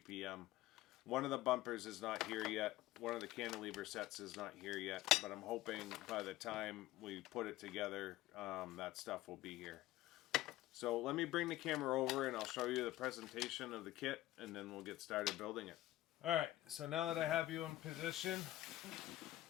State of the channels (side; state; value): right; quieter; 15.7 dB